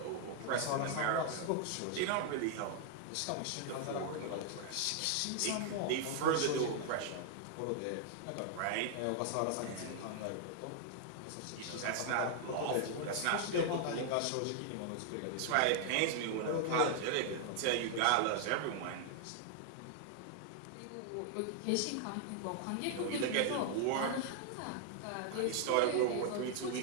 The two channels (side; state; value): both; different; correlation 0.00